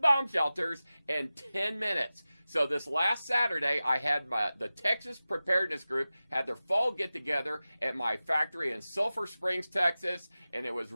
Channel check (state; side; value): inverted; both; correlation -0.95